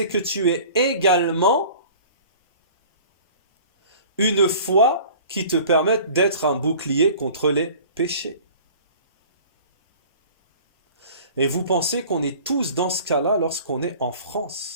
que tu aies également une foi qui te permette d'être un bouclier contre les péchés. Et vous pensez qu'on est tous dans ce cas-là lorsqu'on est en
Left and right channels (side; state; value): both; inverted; correlation -0.45